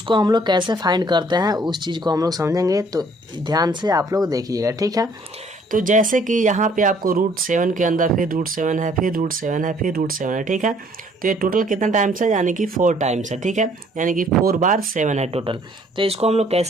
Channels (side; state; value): both; normal; correlation 0.61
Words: हम लोग कैसे फाइंड करते हैं उस चीज़ को हम लोग समझेंगे, तो ध्यान से आप लोग देखिएगा, ठीक है। तो जैसे कि यहाँ पे आपको √7 के अंदर फिर √7 है, फिर √7 है, फिर √7 है, ठीक है। तो ये टोटल कितना टाइम्स है, यानी कि 4 टाइम्स है, ठीक है, यानी कि 4 बार 7 है टोटल। तो इसको हम लोग